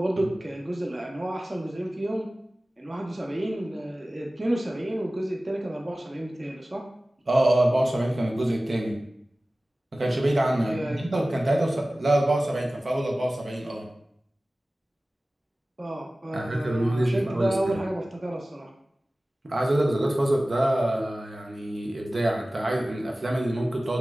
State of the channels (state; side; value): normal; both; correlation 0.97